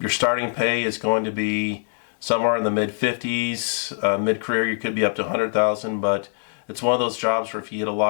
starting pay is going to be somewhere in the mid 50s. Mid-career, you could be up to 100,000, but it's one of those jobs where if you get a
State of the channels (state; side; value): silent; right; digital silence